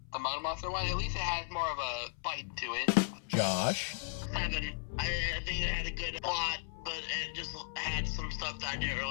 Mud Monster one, at least it had more of a bite to it. Josh. 7. I think it had a good plot, but it just had some stuff that I didn't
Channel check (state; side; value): silent; right; 54 dB below the other